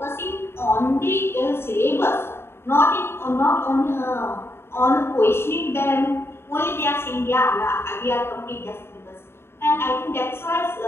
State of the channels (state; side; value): late; right; 0.12 ms